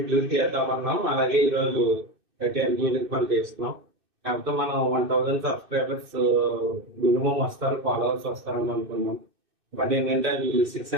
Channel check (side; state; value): left; late; 2.6 ms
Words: చేద్దామన్నాం. అలాగే ఈరోజు 30 పని చేస్తున్నాం. కాకపోతే మనం 1000 సబ్స్క్రైబర్స్ మినిమం వస్తారు, ఫాలోవర్స్ వస్తారని అనుకున్నాం. బట్ ఏంటంటే అది